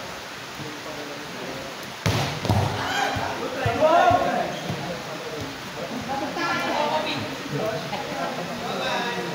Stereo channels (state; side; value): identical; both; correlation 1.00